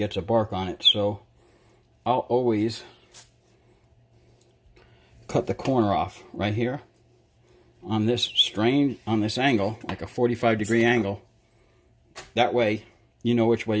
a bark on it. So I'll always cut the corner off right here on this angle, like a 45-degree angle. That way you know which way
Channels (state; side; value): identical; both; correlation 1.00